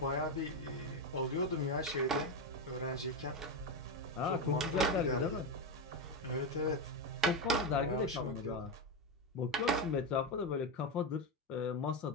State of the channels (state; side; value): normal; both; correlation 0.11